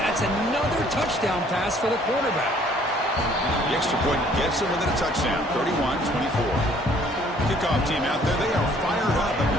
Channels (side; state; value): both; normal; correlation 0.59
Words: That's another touchdown pass for the quarterback. The extra point gets him within a touchdown, 31-24. Kickoff team out there, they are fired up